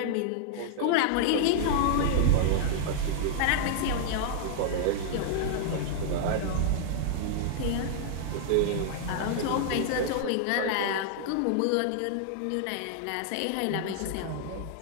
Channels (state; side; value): different; both; correlation -0.01